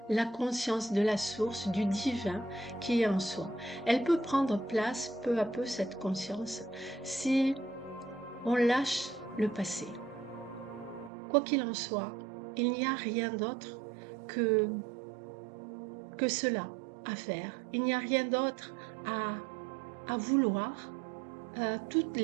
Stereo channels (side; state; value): left; drops out; at 11.1 s